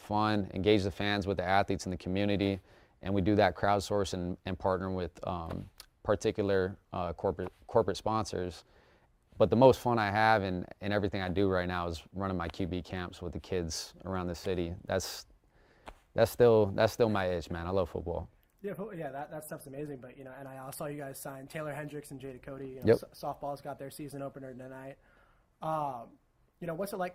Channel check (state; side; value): identical; both; correlation 1.00